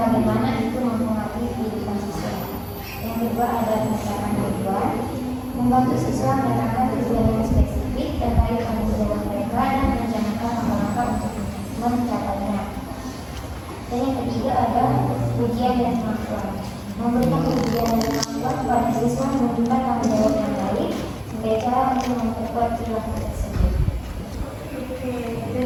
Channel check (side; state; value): both; identical; correlation 1.00